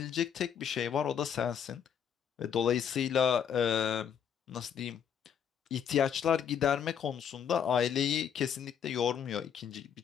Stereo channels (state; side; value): quieter; right; 8.2 dB